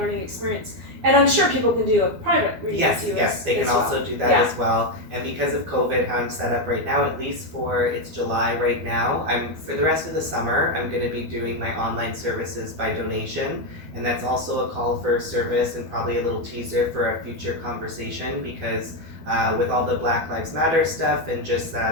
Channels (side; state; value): left; late; 12 ms